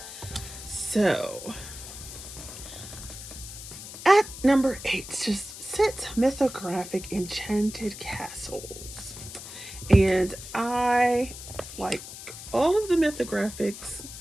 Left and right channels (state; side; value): noise; left; hiss, 12 dB below the sound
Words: So, at number 8 just sits Mythographic Enchanted Castles. And I like all of the Mythographics.